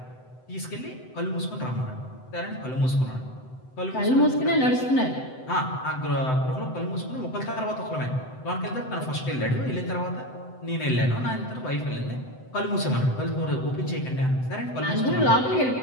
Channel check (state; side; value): late; right; 7.8 ms